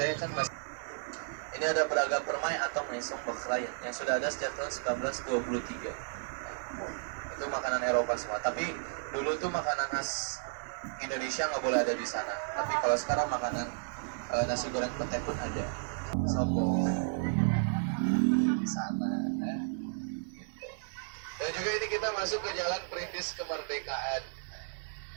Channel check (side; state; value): left; silent; 56 dB below the other